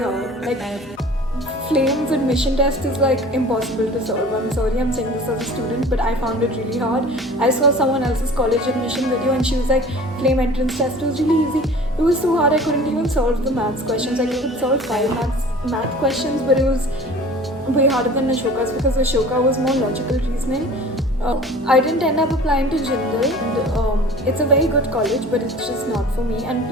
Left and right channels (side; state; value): both; normal; correlation 0.43